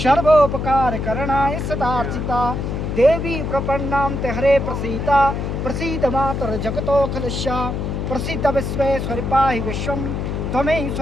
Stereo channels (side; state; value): left; noise; hum, 3 dB below the sound